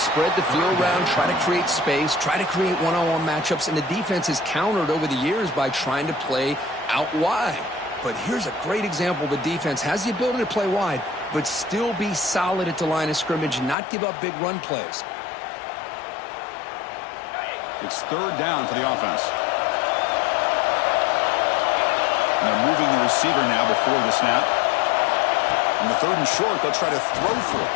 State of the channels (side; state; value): right; drops out; at 13.8 s